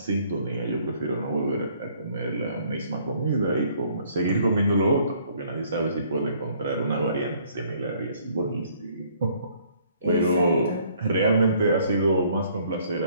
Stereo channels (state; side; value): inverted; both; correlation -0.62